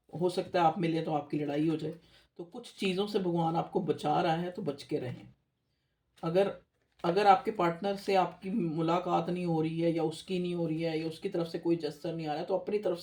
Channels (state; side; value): identical; both; correlation 1.00